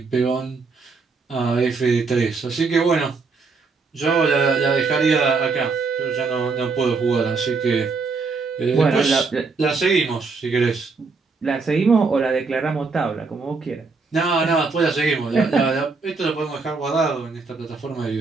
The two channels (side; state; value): left; quieter; 4.4 dB